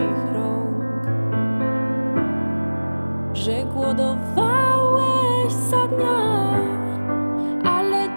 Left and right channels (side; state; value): both; inverted; correlation -1.00